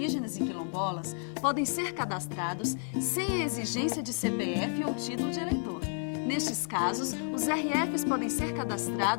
e quilombolas podem ser cadastrados sem a exigência de CPF ou título de eleitor. Nestes casos, os RFs podem ser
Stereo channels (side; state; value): right; silent; 57 dB below the other